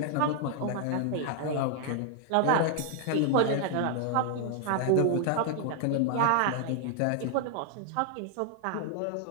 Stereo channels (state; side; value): different; both; correlation -0.01